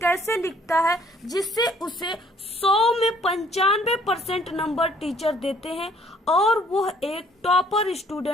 लिखता है जिससे उसे 100 में 95% नंबर टीचर देते हैं और वह एक टॉपर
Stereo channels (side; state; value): both; normal; correlation 0.61